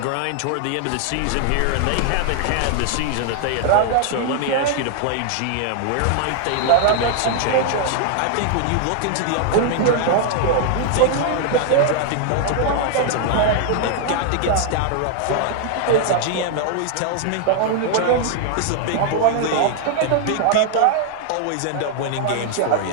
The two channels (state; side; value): different; both; correlation 0.00